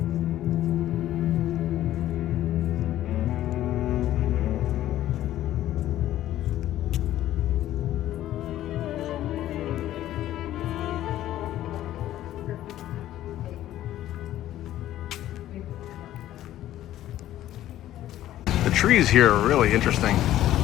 The trees here are really interesting.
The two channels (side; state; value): right; quieter; 13.3 dB